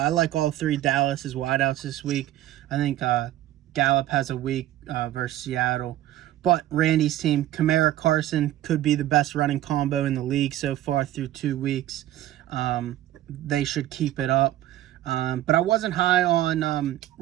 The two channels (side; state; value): left; quieter; 13.8 dB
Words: like all 3 Dallas's wideouts this week. I think Gallup has a week versus Seattle. But Randy's team, Kamara Carson, could be the best running combo in the league so far through 2 weeks. They should keep it up. But I wasn't high on